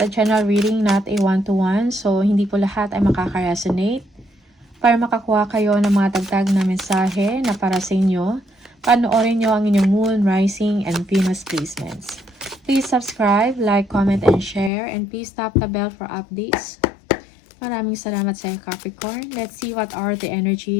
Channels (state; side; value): drops out; right; at 14.7 s